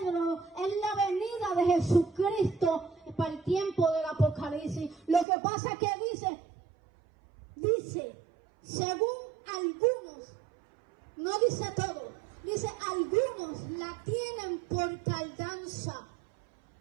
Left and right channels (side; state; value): left; drops out; at 5.2 s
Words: es la venida de Jesucristo para el tiempo del Apocalipsis. Lo que pasa es que dice, según algunos, no dice todo, dice algunos la tienen por tardanza.